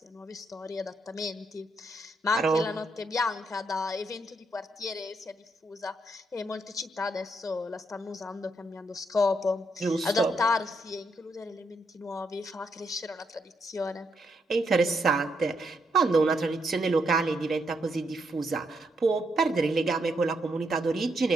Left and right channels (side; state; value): both; normal; correlation 0.78